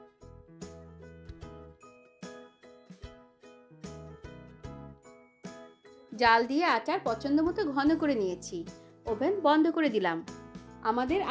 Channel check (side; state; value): both; identical; correlation 1.00